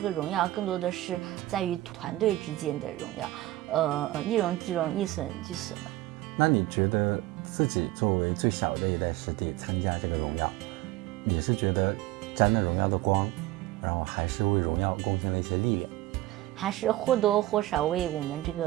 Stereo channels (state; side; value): quieter; left; 16.8 dB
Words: 荣耀更多的是在于团队之间的荣耀，一荣俱荣，一损俱损吧。那你觉得自己作为最小的一代师弟参加这个荣耀，你是觉得沾了荣耀的光，然后还是为荣耀贡献了一些力量？还是或多或少为我们这